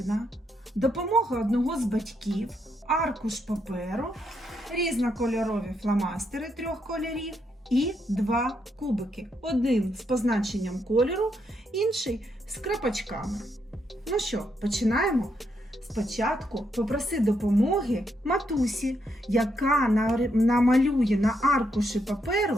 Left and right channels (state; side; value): normal; both; correlation 0.78